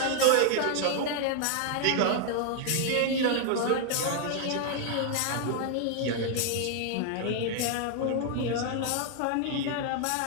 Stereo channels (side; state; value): both; different; correlation 0.00